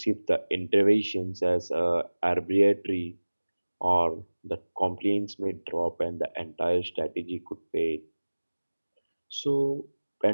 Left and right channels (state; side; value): inverted; both; correlation -1.00